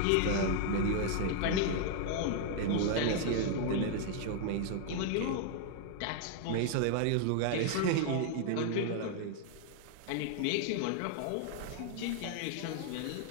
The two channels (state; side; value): different; both; correlation 0.00